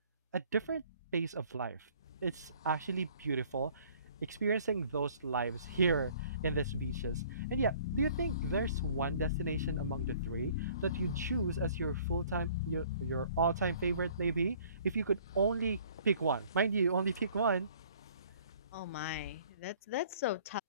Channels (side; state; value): both; inverted; correlation -0.55